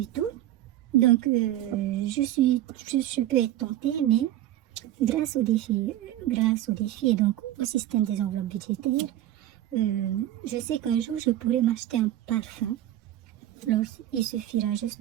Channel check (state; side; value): quieter; left; 13.3 dB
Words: Donc, je peux être tentée, mais grâce au défi et donc au système des enveloppes budgétaires, je sais qu'un jour, je pourrai m'acheter un parfum. Alors, il suffira juste